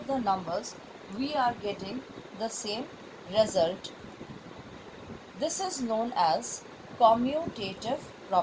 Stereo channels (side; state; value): both; identical; correlation 1.00